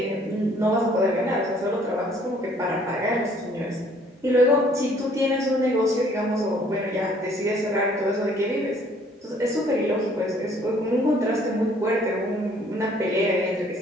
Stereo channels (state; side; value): normal; both; correlation 0.60